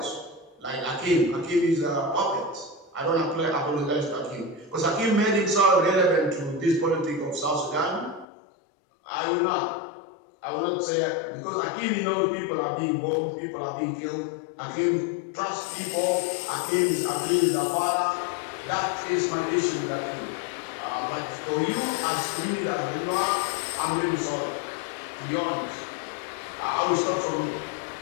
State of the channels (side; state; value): right; drops out; at 8.2 s